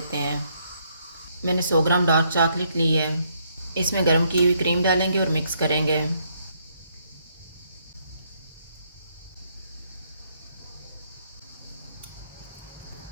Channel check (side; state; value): both; inverted; correlation -0.72